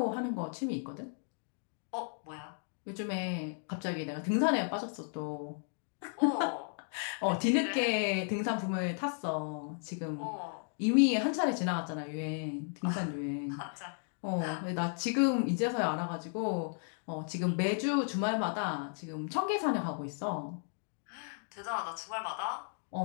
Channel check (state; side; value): silent; right; 55 dB below the other